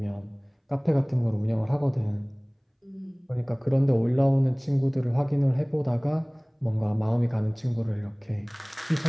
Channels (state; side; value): identical; both; correlation 1.00